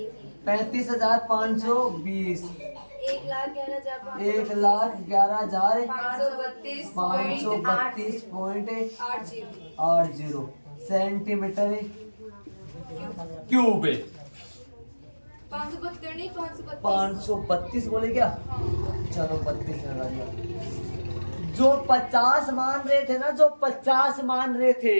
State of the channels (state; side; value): inverted; both; correlation -1.00